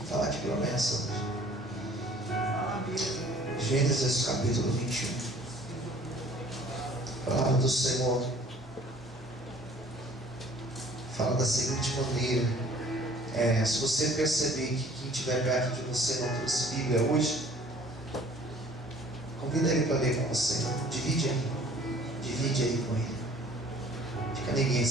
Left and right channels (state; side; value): normal; both; correlation 0.53